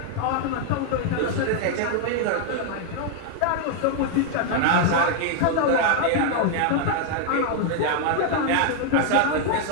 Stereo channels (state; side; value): different; both; correlation 0.00